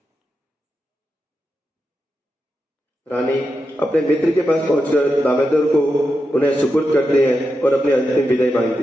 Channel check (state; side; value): normal; both; correlation 0.88